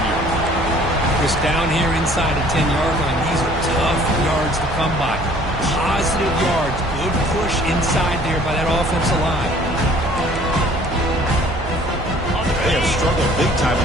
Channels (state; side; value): noise; right; hum, 11 dB below the sound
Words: Just down here inside the 10-yard line. These are tough yards to come by. Positive yards. Good push inside there by that offensive line. They have struggled big time in